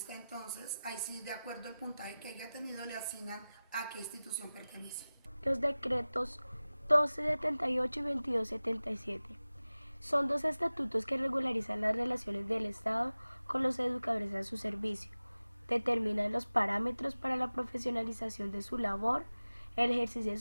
entonces, ahí sí, de acuerdo al puntaje que haya tenido, le asignan a qué institución pertenece. Los decretos 1278 y 2277 son dos estatutos que regularizan las relaciones del Estado con los educadores a su servicio, determinan los parámetros para la profesionalización de su labor, el ejercicio de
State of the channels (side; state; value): both; inverted; correlation -0.97